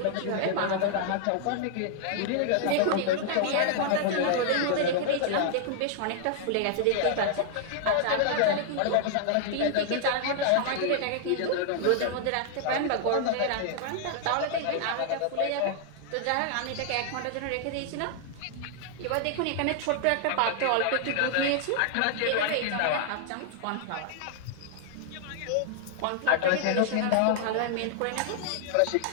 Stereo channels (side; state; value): both; different; correlation -0.01